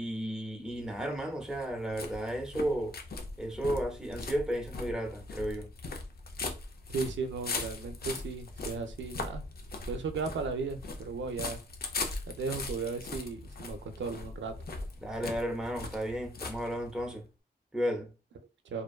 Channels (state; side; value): normal; both; correlation 0.63